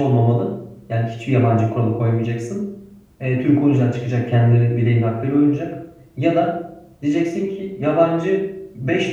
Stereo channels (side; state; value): both; identical; correlation 1.00